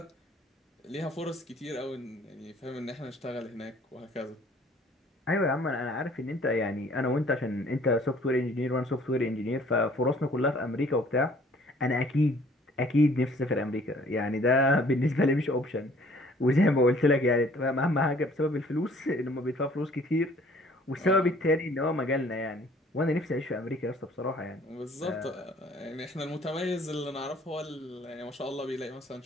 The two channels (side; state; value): both; normal; correlation 0.56